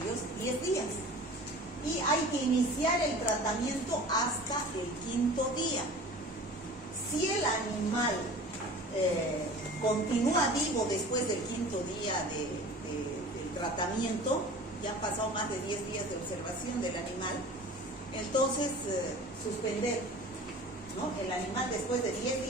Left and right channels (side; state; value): both; normal; correlation 0.41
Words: 10 días. Y hay que iniciar el tratamiento hasta el 5º día. Si el animal continúa vivo después del 5º día del tratamiento, ya han pasado más de 10 días de observación del animal, entonces suspender, ¿no? El animal después de 10